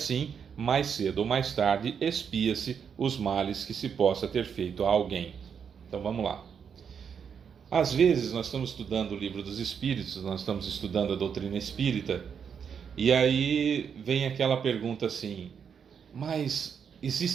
mais cedo ou mais tarde, expia-se os males que se possa ter feito a alguém. Então vamos lá. Às vezes nós estamos estudando o Livro dos Espíritos, nós estamos estudando a doutrina espírita, e aí vem aquela pergunta assim: mas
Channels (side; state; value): left; quieter; 7.1 dB